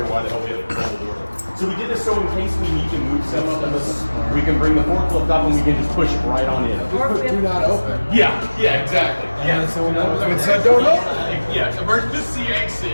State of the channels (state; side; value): inverted; both; correlation -1.00